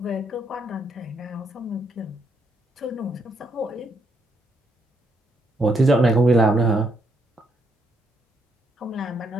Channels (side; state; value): both; normal; correlation 0.75